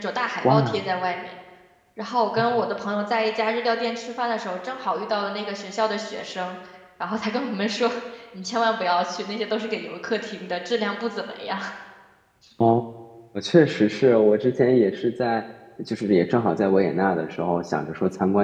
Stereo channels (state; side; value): identical; both; correlation 1.00